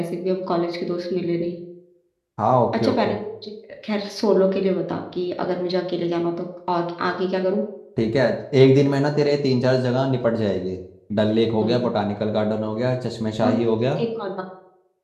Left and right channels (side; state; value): both; identical; correlation 1.00